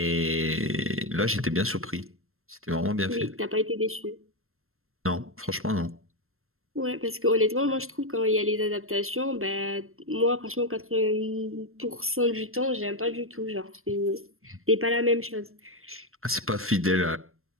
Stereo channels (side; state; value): left; late; 0.62 ms